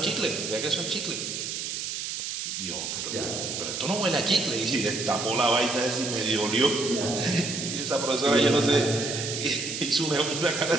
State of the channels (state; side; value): noise; right; hiss, 4 dB below the sound